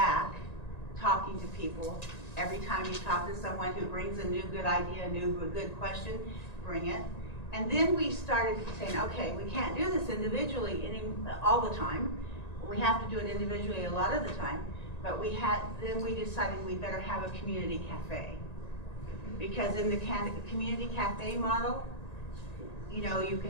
talking to people. Every time you talk to someone who brings a new good idea, a good question, bring it. And then we started saying, okay, we can't do this individually all the time. We have to do it individually a lot of the time. But then we decided we better have a community cafe. Because in the community cafe model, you know, you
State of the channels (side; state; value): right; late; 1.9 ms